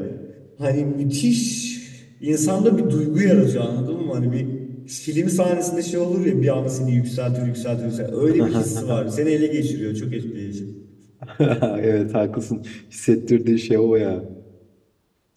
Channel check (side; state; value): both; identical; correlation 1.00